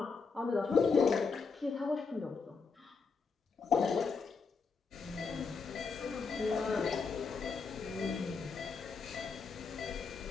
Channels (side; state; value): right; quieter; 5.0 dB